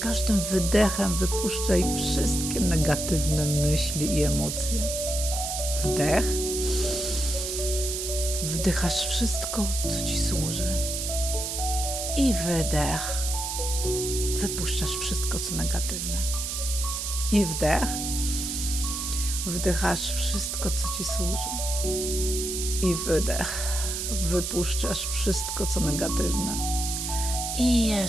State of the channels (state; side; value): noise; right; hiss, 3 dB below the sound